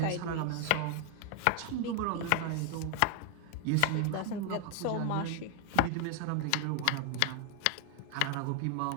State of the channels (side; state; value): both; different; correlation 0.00